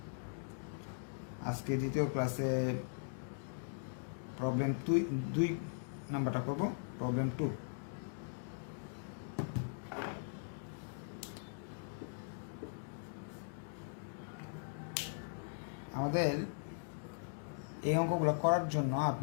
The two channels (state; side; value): silent; right; digital silence